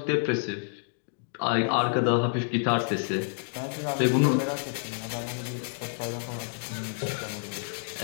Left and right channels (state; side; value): silent; right; digital silence